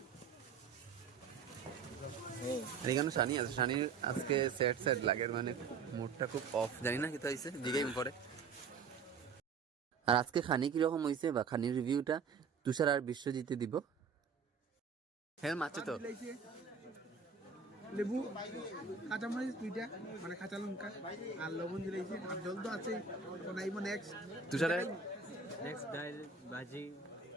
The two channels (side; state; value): left; quieter; 5.5 dB